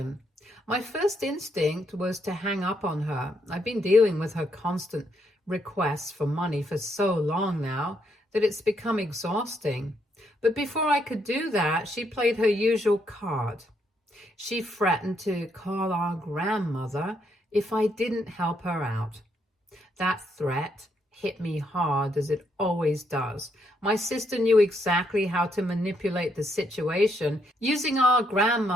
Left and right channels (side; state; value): both; normal; correlation 0.75